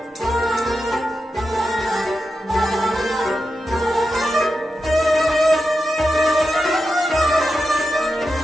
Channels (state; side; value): normal; both; correlation 0.89